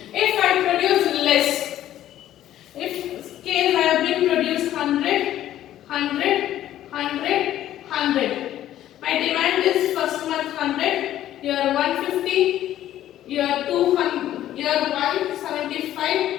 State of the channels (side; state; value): right; quieter; 12.6 dB